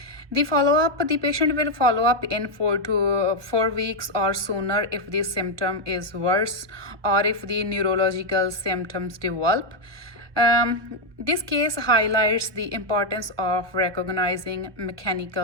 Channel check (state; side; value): late; left; 1.3 ms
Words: The patient will follow up in 4 weeks or sooner if the symptom is worse or if the neurological symptoms develop. This case highlights the importance of recognizing